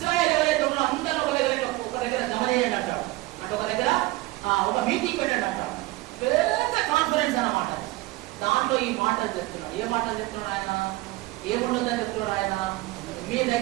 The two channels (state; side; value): quieter; left; 19.6 dB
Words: ఎవరైతే ఉన్నారో అందరూ ఒక దగ్గర జమ చేయండి అంటాడు. అంటే ఒక దగ్గర ఒక మీటింగ్ పెట్టండి అంటాడు. పెద్ద కాన్ఫరెన్స్ అన్నమాట. దాంట్లో ఈ మాటలు చెప్తున్నాడు. ఏ మాటలు చెప్తున్నాడు ఆయన? ఏముండదని చెప్తున్నాడు ఆయన? మీ